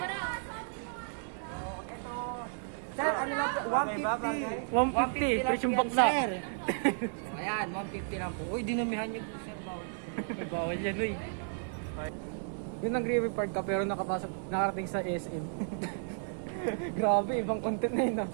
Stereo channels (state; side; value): silent; left; digital silence